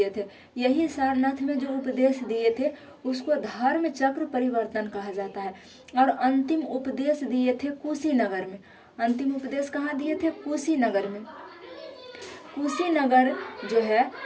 थे। यही सारनाथ में जो उपदेश दिए थे उसको धर्म चक्र परिवर्तन कहा जाता है। और अंतिम उपदेश दिए थे कुशीनगर में। अंतिम उपदेश कहाँ दिए थे? कुशीनगर में। कुशीनगर जो है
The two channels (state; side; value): identical; both; correlation 1.00